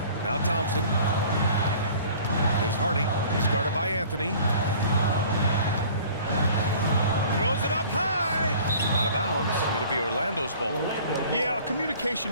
Now Thompson. Here's Hardy. He's guarded by Anthony. Throws it up high. Out of bounds. It'll be Orlando's ball. Yeah, a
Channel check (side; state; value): both; inverted; correlation -0.48